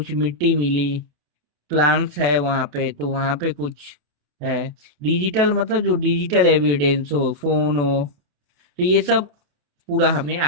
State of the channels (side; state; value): left; late; 28 ms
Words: मिट्टी मिली, प्लांट्स है वहां पे, तो वहां पे कुछ है। डिजिटल मतलब जो डिजिटल एविडेंस हो, फोन हो, तो ये सब पूरा हमें